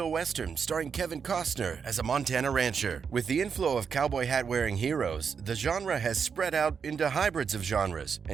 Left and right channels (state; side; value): quieter; left; 6.4 dB